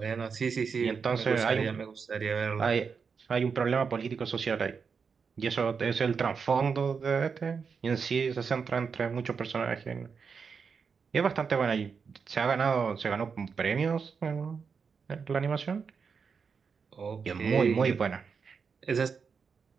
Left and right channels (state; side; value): quieter; left; 5.8 dB